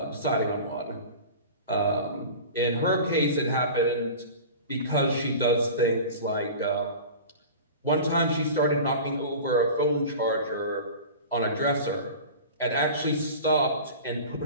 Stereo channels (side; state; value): both; inverted; correlation -0.36